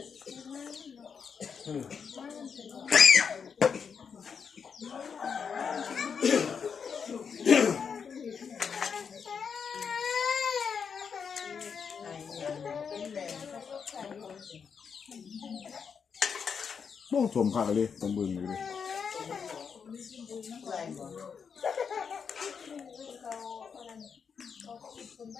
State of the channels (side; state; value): right; quieter; 6.4 dB